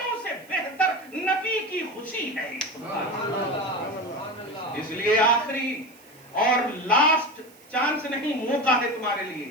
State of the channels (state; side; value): noise; right; hiss, 26 dB below the sound